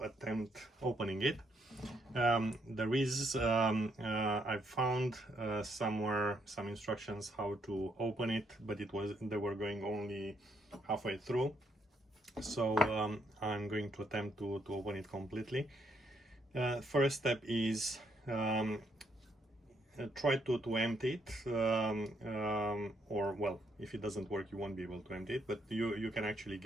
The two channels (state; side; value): normal; both; correlation 0.74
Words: opening it. There is I've found somewhere some instructions how to open it, but they were going only halfway through. So I'm going to attempt to open it completely. First step is try to empty it, or well, if it doesn't work you won't be able to empty it, but you can actually